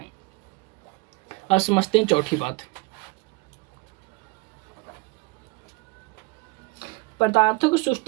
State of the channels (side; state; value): left; quieter; 25.2 dB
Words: अब समझते हैं चौथी बात। पदार्थों के